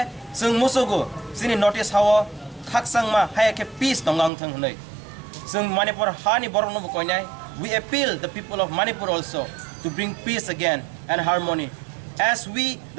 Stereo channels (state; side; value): drops out; left; at 4.3 s